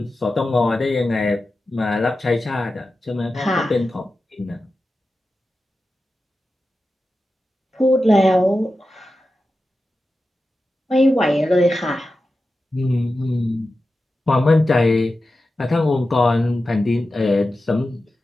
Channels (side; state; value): both; normal; correlation 0.92